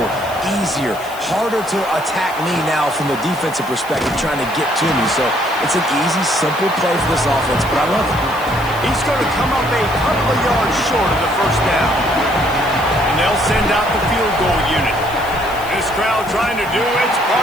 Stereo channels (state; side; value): noise; left; hiss, 18 dB below the sound